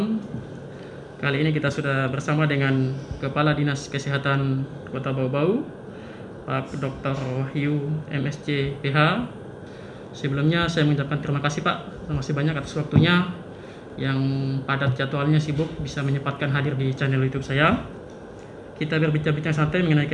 Kali ini kita sudah bersama dengan Kepala Dinas Kesehatan Kota Bau-Bau, Pak Dr. Wahyu MSc PH. Sebelumnya saya mengucapkan terima kasih Pak, terima kasih banyak atas waktunya yang padat jadwalnya sibuk bisa menyempatkan hadir di channel YouTube saya. Kita berbincang-bincang santai mengenai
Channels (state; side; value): identical; both; correlation 1.00